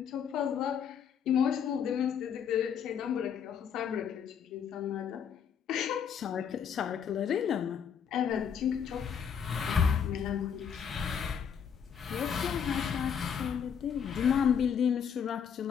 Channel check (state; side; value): quieter; right; 7.6 dB